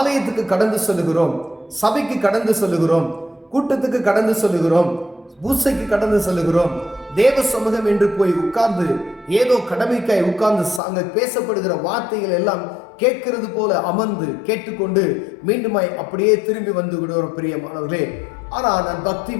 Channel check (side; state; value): right; drops out; at 10.8 s